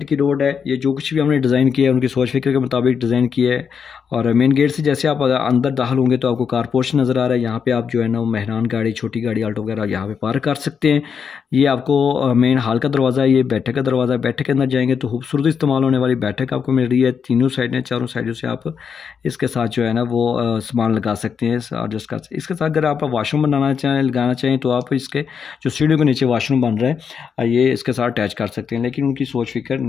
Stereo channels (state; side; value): quieter; right; 6.7 dB